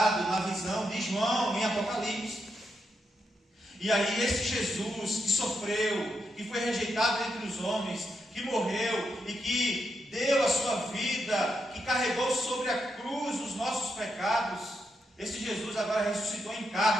na visão de João em Apocalipse. E aí esse Jesus que sofreu, que foi rejeitado entre os homens, que morreu e que deu a sua vida, que carregou sobre a cruz os nossos pecados, esse Jesus agora ressuscitou em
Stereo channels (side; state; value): both; normal; correlation 0.82